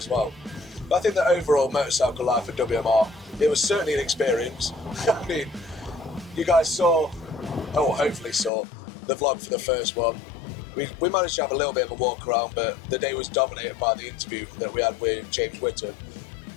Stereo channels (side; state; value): right; drops out; at 8.5 s